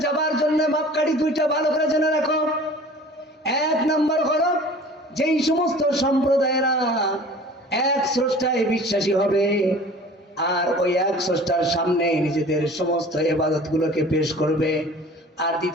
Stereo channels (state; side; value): normal; both; correlation 0.45